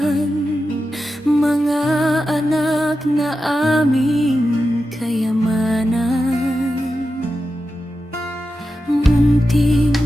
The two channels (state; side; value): normal; both; correlation 0.91